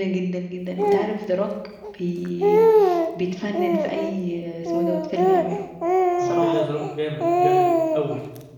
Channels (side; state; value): both; identical; correlation 1.00